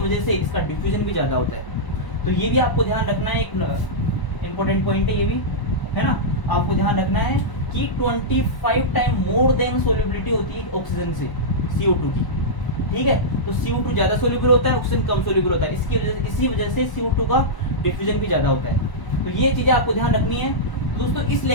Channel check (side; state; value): right; late; 1.0 ms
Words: से इसका डिफ्यूजन भी ज्यादा होता है। तो ये भी आपको ध्यान रखना है, एक इंपॉर्टेंट पॉइंट है ये भी, है ना। आपको ध्यान रखना है कि 25 टाइम मोर देन सोल्युबिलिटी होती है ऑक्सीजन से CO2 की। ठीक है, तो CO2 ज्यादा सोल्यूबल होता है, ऑक्सीजन कम सोल्यूबल होता है, इसी वजह से CO2 का डिफ्यूजन भी ज्यादा होता है। तो ये चीजें आपको ध्यान रखनी है। दोस्तों इस